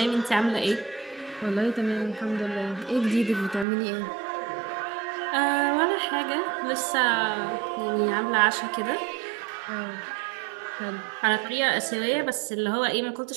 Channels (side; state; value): left; drops out; at 3.7 s